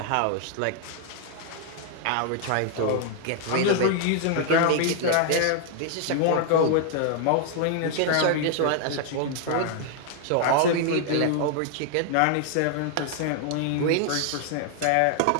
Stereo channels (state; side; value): different; both; correlation 0.00